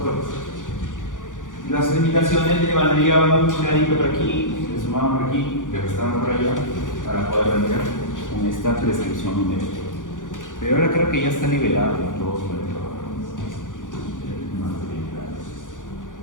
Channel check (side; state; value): right; late; 0.88 ms